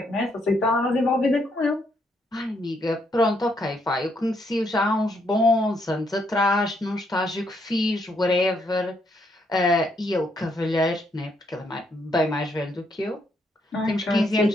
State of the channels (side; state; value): both; normal; correlation 0.74